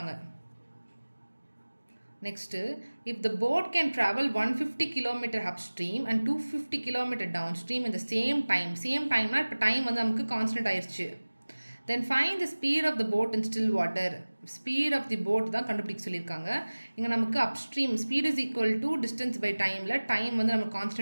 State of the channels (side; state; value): both; inverted; correlation -1.00